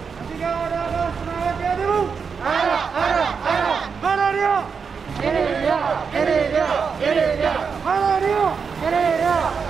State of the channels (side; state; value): left; quieter; 5.9 dB